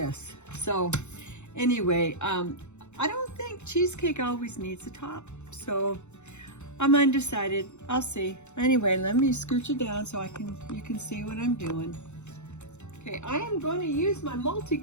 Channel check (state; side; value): late; right; 0.83 ms